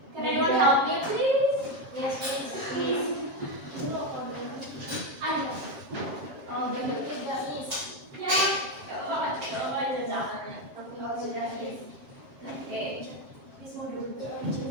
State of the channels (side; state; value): left; late; 7.5 ms